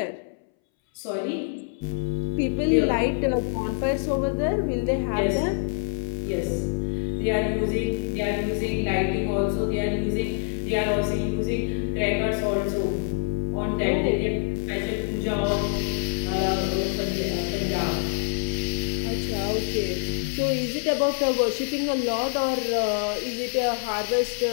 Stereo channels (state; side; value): silent; right; 61 dB below the other